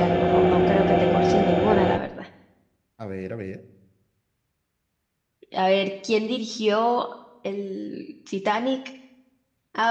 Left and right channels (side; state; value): both; identical; correlation 1.00